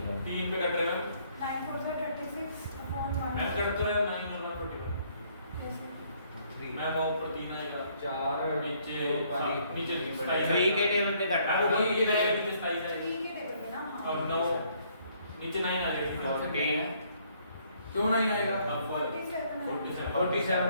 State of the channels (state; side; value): inverted; both; correlation -0.66